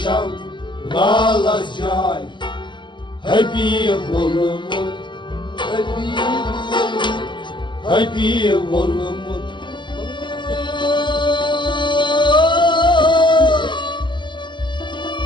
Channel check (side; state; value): right; late; 0.23 ms